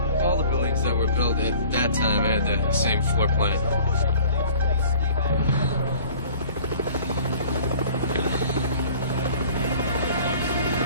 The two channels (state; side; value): inverted; both; correlation -0.48